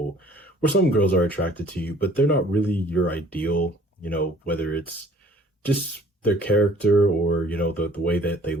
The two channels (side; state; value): both; normal; correlation 0.55